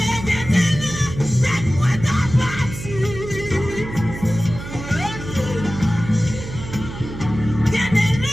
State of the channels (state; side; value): noise; right; hum, 10 dB below the sound